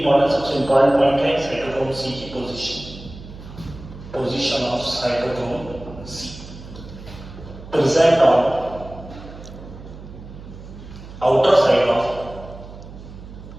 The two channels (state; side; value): noise; right; hum, 15 dB below the sound